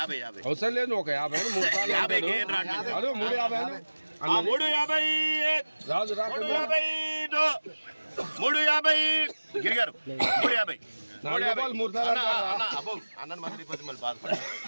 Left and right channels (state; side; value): inverted; both; correlation -1.00